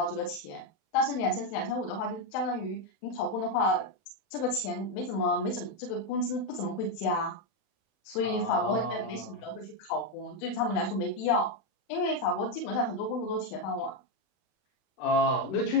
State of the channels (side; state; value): right; late; 31 ms